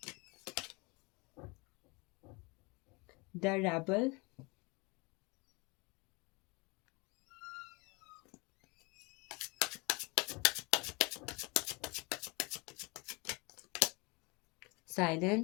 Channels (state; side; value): quieter; right; 27.8 dB